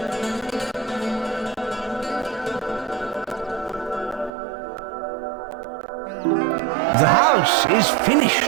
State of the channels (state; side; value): drops out; left; at 4.3 s